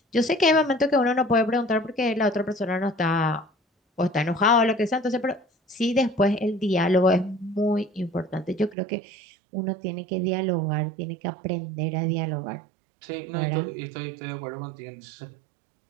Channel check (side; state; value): left; drops out; at 8.8 s